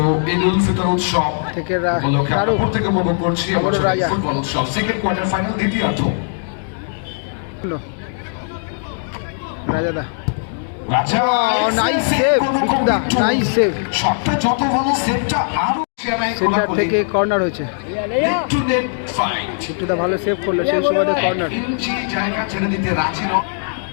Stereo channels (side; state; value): right; silent; digital silence